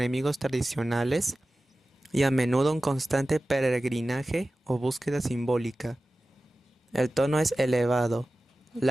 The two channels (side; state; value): both; normal; correlation 0.95